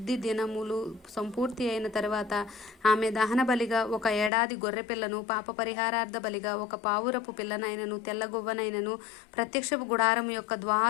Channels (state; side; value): drops out; right; at 4.3 s